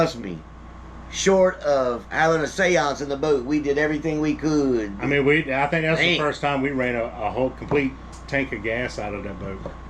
me. short of having a seance in the boat. We did everything we could. I mean, I think that's the Man. first time we ran a whole complete tank of gas out of that boat.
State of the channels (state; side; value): identical; both; correlation 1.00